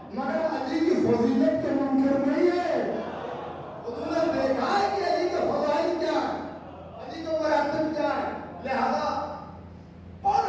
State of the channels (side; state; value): both; identical; correlation 1.00